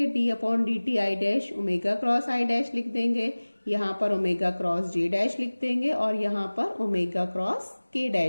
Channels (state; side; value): inverted; both; correlation -1.00